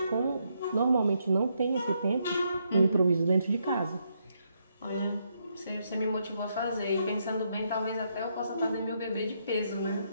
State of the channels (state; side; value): inverted; both; correlation -0.77